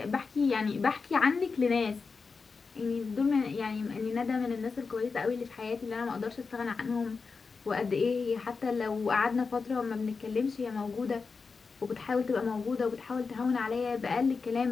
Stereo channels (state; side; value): quieter; right; 4.7 dB